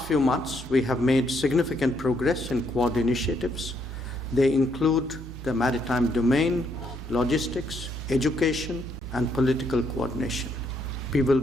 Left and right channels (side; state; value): both; normal; correlation 0.73